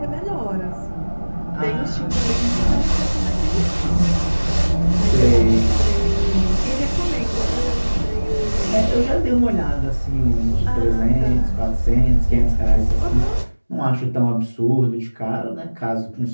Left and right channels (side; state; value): both; inverted; correlation -1.00